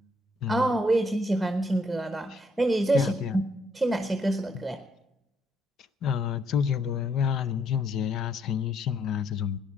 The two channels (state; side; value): normal; both; correlation 0.71